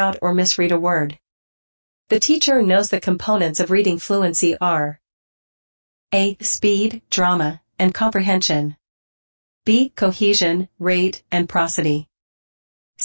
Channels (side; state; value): both; inverted; correlation -1.00